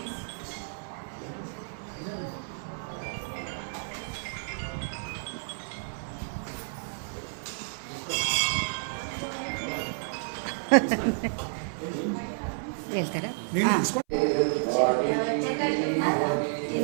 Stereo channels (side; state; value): left; silent; 56 dB below the other